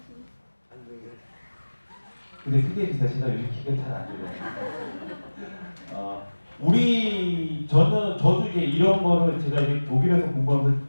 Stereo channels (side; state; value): both; inverted; correlation -1.00